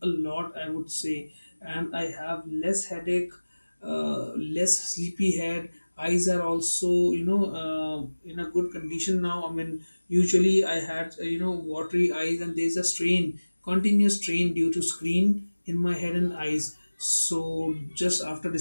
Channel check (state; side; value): inverted; both; correlation -1.00